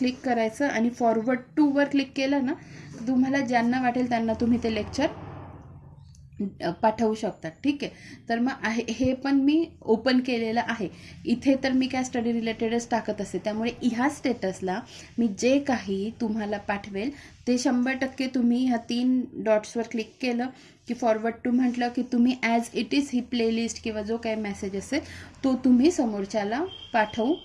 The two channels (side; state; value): both; identical; correlation 1.00